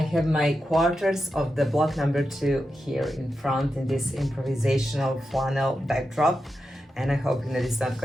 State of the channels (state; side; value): normal; both; correlation 0.89